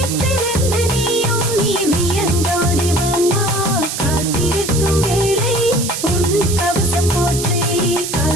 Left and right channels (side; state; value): right; noise; hiss, 5 dB below the sound